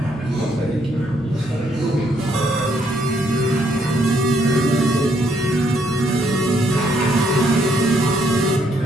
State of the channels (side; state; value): both; normal; correlation 0.72